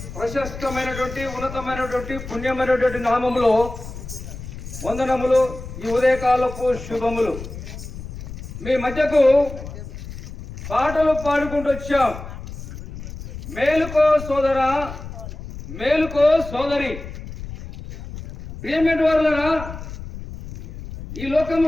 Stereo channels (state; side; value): noise; left; rumble, 11 dB below the sound